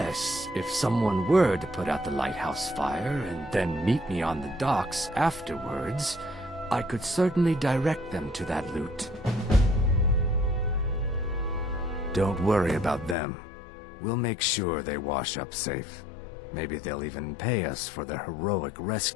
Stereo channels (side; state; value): right; drops out; at 13.2 s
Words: if someone were to put out the lighthouse fire and then meet me on the docks afterwards, I could certainly direct them to that loot. Don't worry about them. We'll make sure they wash up safe. Maybe they'll even pay us for their heroic